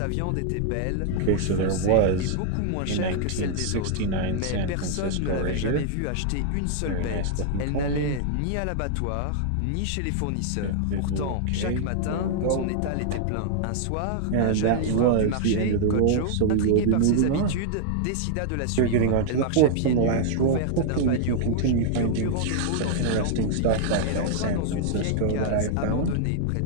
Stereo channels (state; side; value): different; both; correlation -0.01